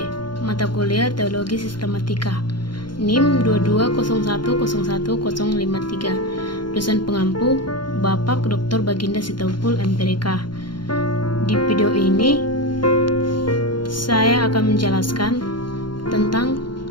mata kuliah Teologi Sistematika, NIM 221011053. Dosen pengampu Bapak Dr. Baginda Sitompul MPDK. Di video ini saya akan menjelaskan tentang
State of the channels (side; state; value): right; late; 0.72 ms